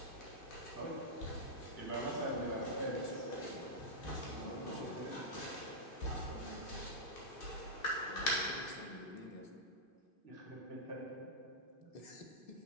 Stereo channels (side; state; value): right; late; 2.5 ms